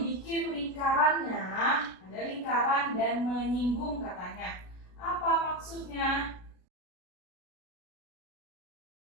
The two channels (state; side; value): late; right; 33 ms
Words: lingkarannya, ada lingkaran dan menyinggung katanya. Apa maksudnya?